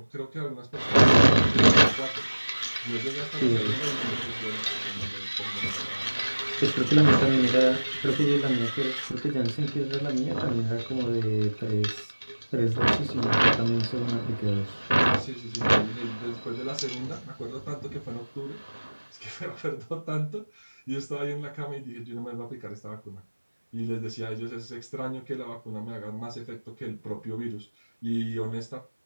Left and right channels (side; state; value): both; inverted; correlation -1.00